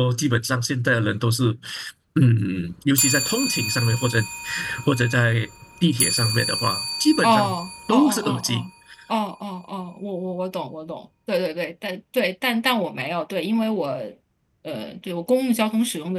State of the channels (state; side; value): identical; both; correlation 1.00